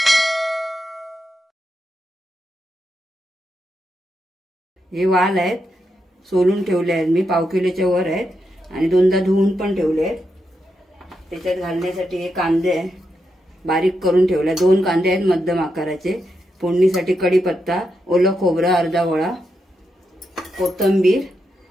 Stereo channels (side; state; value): both; normal; correlation 0.84